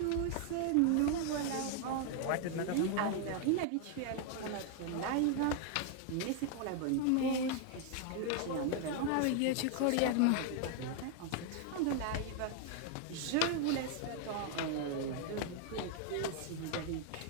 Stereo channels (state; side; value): different; both; correlation 0.00